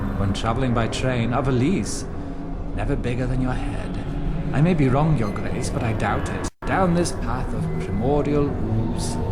When traveling by train, a valise, never bigger than your head. I may be wrong, Your Grace, but I doubt it. Down this path of primordial ooze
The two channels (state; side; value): identical; both; correlation 1.00